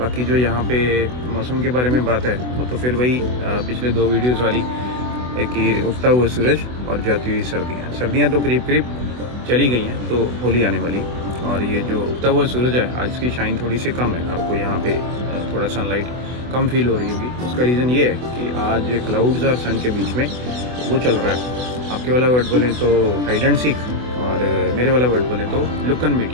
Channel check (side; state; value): left; late; 24 ms